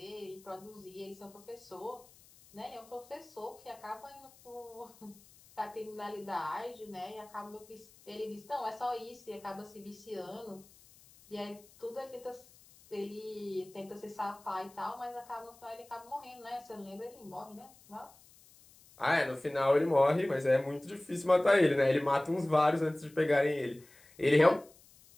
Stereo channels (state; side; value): noise; left; hiss, 25 dB below the sound